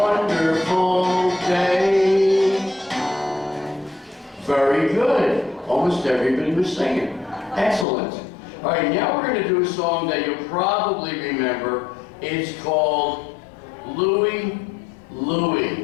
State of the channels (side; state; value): right; drops out; at 7.9 s